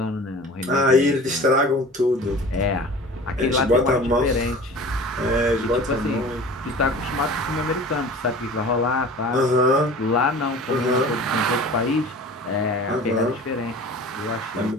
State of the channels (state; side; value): normal; both; correlation 0.41